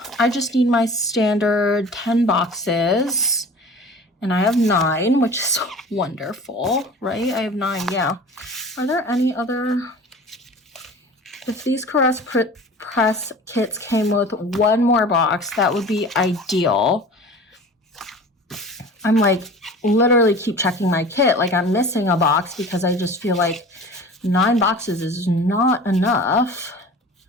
I just need my standard 10 boxes, and I have 9, which is wonderful, right? I have 9, yeah. Are there any other? If these Caress Press kits came with one more box, that would be ideal. I'm like literally keep checking my kit, like I'm missing a box because I just feel like 9 boxes is not enough,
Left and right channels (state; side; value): normal; both; correlation 0.40